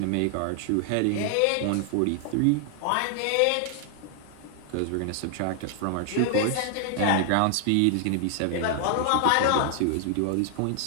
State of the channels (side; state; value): both; different; correlation 0.00